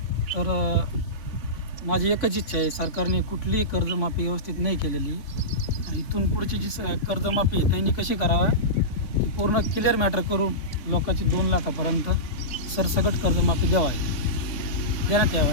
तर माझी एकच इच्छा आहे, सरकारने कुठलीही कर्जमाफी व्यवस्थित नाही केलेली. इथून पुढची जी कर्जमाफी आहे त्यांनी कशी करावं, ती पूर्ण क्लिअर मॅटर करून लोकांची 2 लाखापर्यंत सरसकट कर्जमाफी देण्यात यावं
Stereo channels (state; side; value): late; right; 3.5 ms